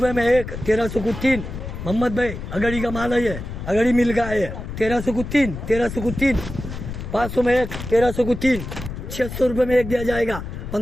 में एक, 1300 को 3। मोहम्मद भाई अगड़ी का माल है ये, अगड़ी मिल का है। 1300 को 3। 1300 को 3। 500 में एक, 1300 को 3। 600 रुपये में एक दिया जाएगा।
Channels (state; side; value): noise; left; rumble, 8 dB below the sound